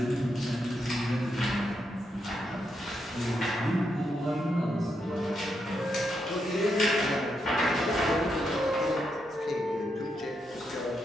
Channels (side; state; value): both; normal; correlation 0.82